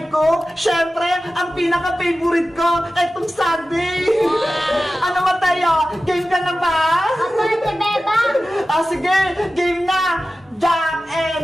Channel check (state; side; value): normal; both; correlation 0.95